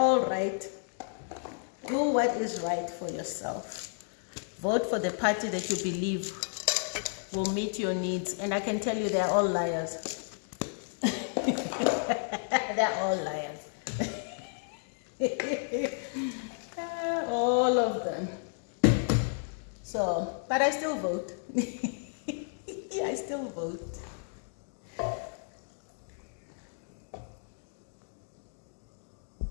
right. Do what is right for yourself. Vote for the party that you believe will meet your needs. And I can tell you, they're all liars. They're all liars. All of them. So, but I still vote. I still vote.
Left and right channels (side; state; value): right; silent; digital silence